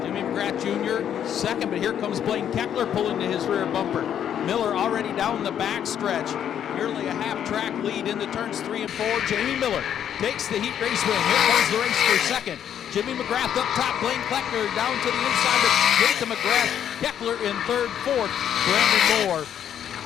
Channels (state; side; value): quieter; right; 9.5 dB